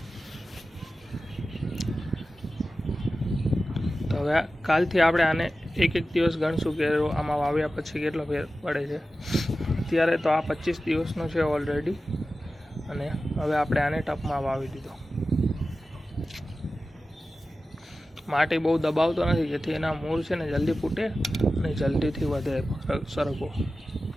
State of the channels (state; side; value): normal; both; correlation 0.94